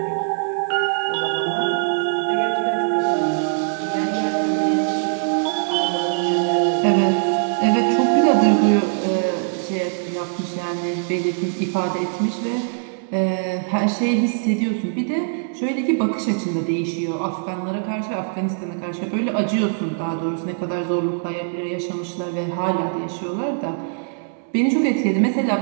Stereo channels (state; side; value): silent; left; 64 dB below the other